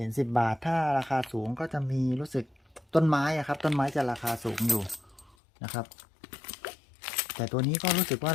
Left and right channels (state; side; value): drops out; right; at 5.4 s